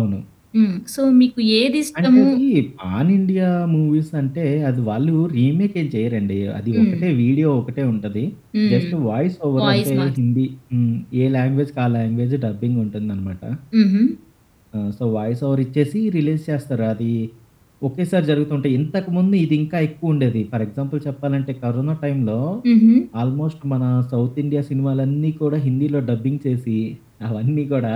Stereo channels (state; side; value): identical; both; correlation 1.00